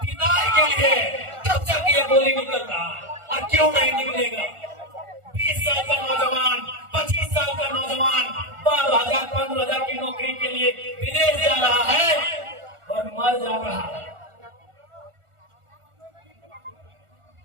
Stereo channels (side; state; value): left; late; 1.4 ms